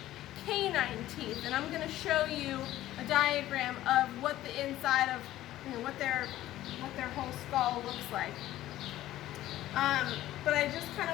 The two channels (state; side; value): quieter; right; 14.4 dB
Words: canine teeth, and I'm going to show you a diagram of what the inside of, what their whole skull looks like. But I just kind